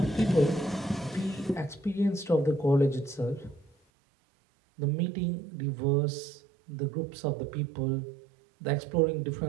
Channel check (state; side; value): drops out; left; at 3.8 s